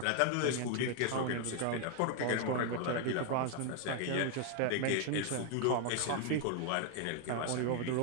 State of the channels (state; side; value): different; both; correlation 0.01